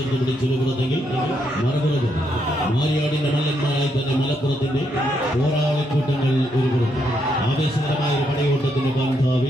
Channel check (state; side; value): normal; both; correlation 0.77